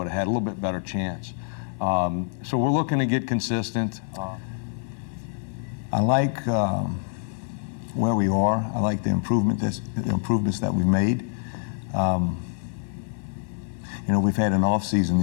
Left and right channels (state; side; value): silent; right; 61 dB below the other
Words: have had a little bit better chance. So we're looking to get consistent. I like where we are. I like the improvements that we've made. You know, we've had an off season